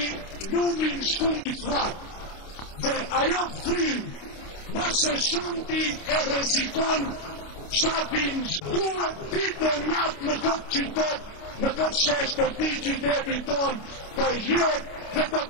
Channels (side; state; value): right; late; 29 ms